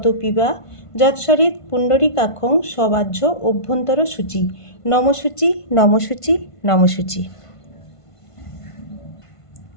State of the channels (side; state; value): right; late; 1.5 ms